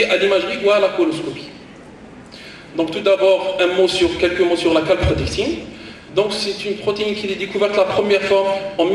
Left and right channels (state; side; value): identical; both; correlation 1.00